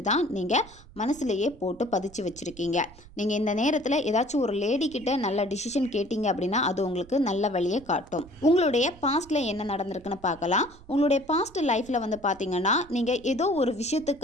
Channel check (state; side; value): noise; right; rumble, 22 dB below the sound